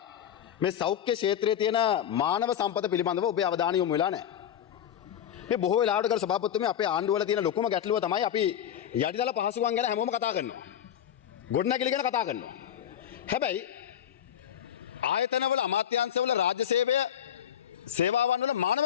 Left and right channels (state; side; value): quieter; right; 9.9 dB